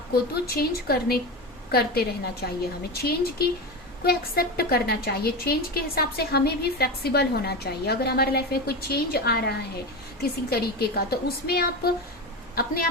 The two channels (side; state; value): both; normal; correlation 0.21